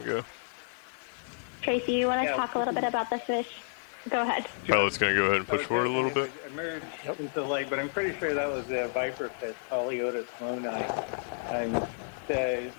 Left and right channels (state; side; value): silent; right; 57 dB below the other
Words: go. Tracy, you want to Yeah. talk a little bit about the fish? Go ahead. Pilot's going to go ahead and push forward a little bit. Emerged into the light, but I'm pretty sure that was a viper fish, Poliotis loni. The